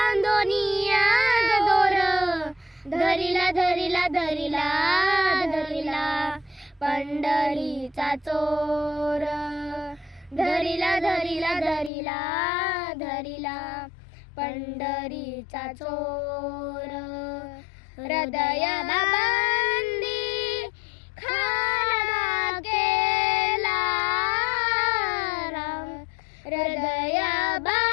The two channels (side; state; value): right; drops out; at 11.9 s